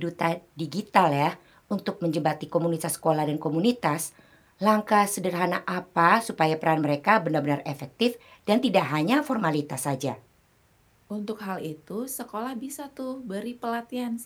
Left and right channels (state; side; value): identical; both; correlation 1.00